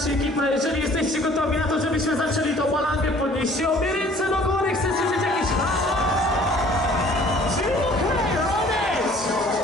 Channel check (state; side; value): normal; both; correlation 0.53